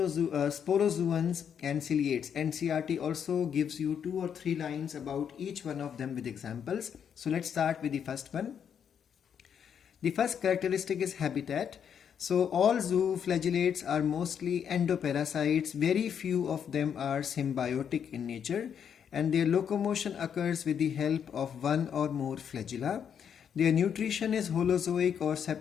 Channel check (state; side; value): quieter; right; 8.0 dB